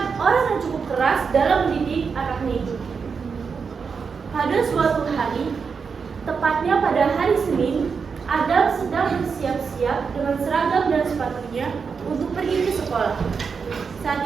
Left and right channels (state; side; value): quieter; left; 5.6 dB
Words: orang yang cukup keras dalam mendidik anaknya itu. Pada suatu hari, tepatnya pada hari Senin, Adam sedang bersiap-siap dengan seragam dan sepatunya untuk pergi ke sekolah.